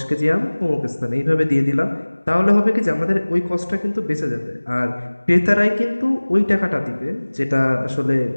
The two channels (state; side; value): inverted; both; correlation -1.00